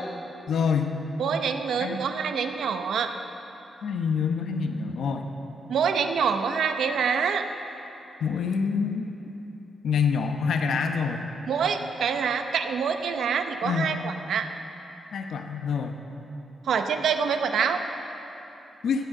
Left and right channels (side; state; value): both; normal; correlation 0.70